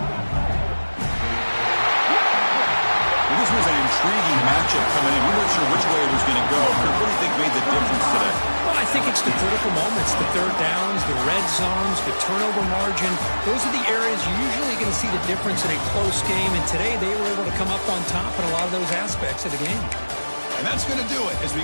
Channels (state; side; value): inverted; both; correlation -1.00